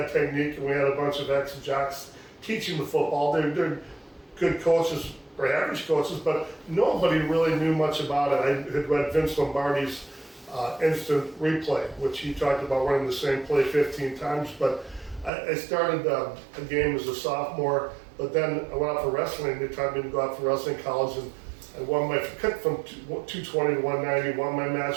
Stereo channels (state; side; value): drops out; left; at 15.3 s